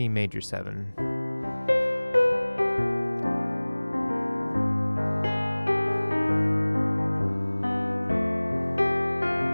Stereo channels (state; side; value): inverted; both; correlation -1.00